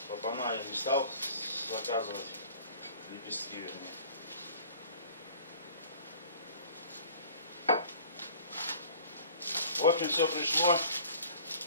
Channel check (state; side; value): inverted; both; correlation -0.47